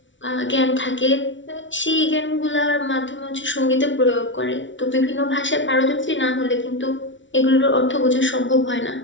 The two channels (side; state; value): right; late; 0.55 ms